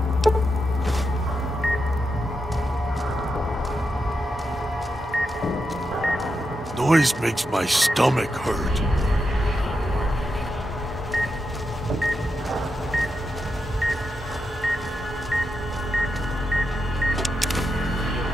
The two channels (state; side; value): normal; both; correlation 0.86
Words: Noise makes my stomach hurt.